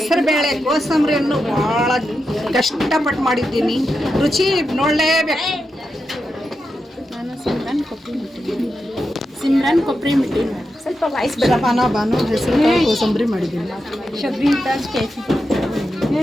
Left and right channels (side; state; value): both; normal; correlation 0.88